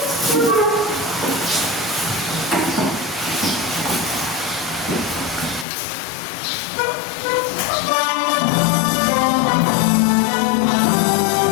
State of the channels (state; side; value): drops out; right; at 5.7 s